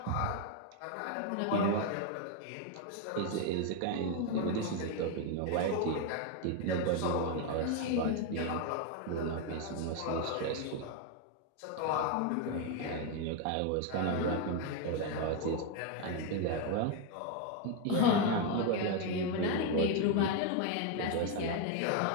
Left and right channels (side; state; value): both; different; correlation 0.01